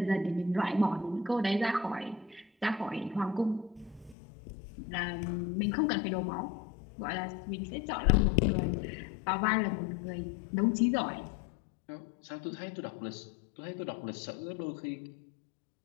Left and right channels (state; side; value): drops out; right; at 4.2 s